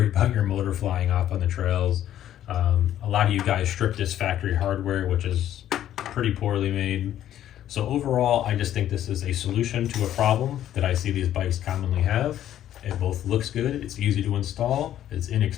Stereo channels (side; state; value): right; quieter; 11.7 dB